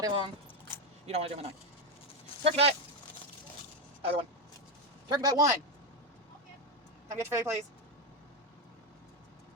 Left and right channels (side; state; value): both; normal; correlation 0.08